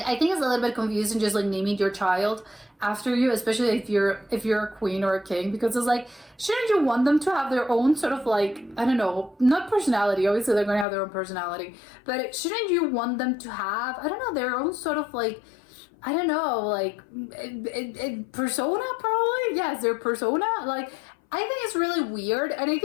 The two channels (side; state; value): right; drops out; at 10.9 s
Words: I think it's a little bit confusing just like naming your child after you, especially if you're a queen or a king, because it's like, shouldn't you want them to have their own sort of like, I don't know, not personality, obviously they're going to have their own personality, but shouldn't you want them to have, I don't know, their own sort of like, I don't know, like persona, probably. Yes, their persona. Like, I think it's really weird, and I